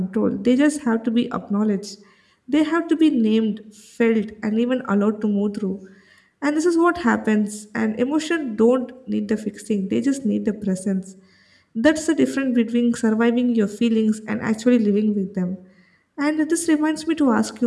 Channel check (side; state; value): both; identical; correlation 1.00